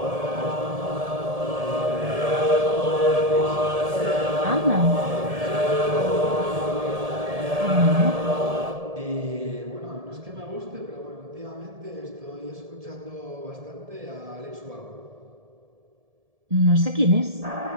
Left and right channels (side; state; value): left; late; 1.7 ms